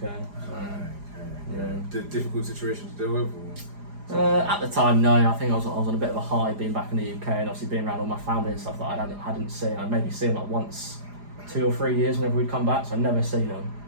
So, yeah. Difficult situation to deal with? At the time, no. I think I was on a bit of a high being back in the UK, and obviously being around all my family and stuff that I hadn't seen. I'd maybe seen like once, 2 or 3 years whenever we'd come back, so I'd never seen them.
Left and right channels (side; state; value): left; late; 4.9 ms